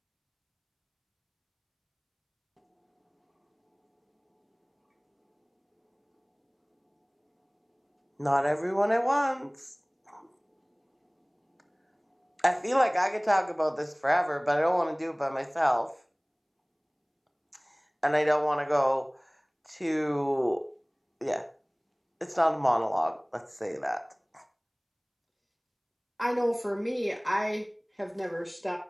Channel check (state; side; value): identical; both; correlation 1.00